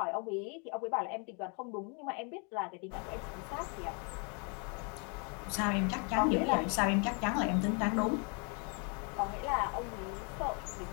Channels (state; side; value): quieter; right; 35.8 dB